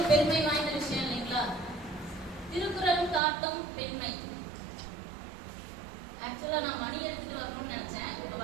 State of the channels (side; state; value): left; drops out; at 3.2 s